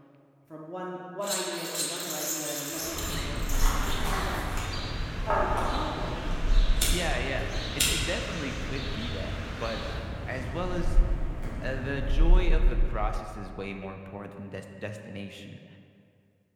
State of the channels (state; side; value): identical; both; correlation 1.00